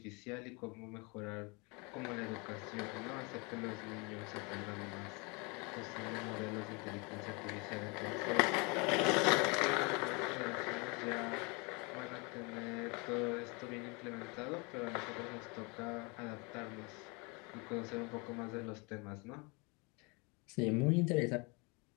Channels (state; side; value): quieter; right; 29.8 dB